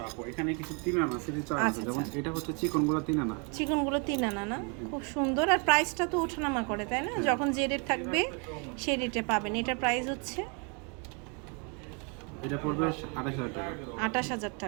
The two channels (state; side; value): quieter; left; 34.5 dB